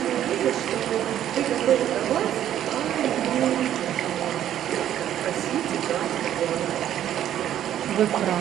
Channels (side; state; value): left; quieter; 11.2 dB